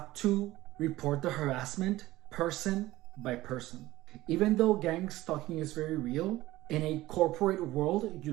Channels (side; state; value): left; quieter; 17.1 dB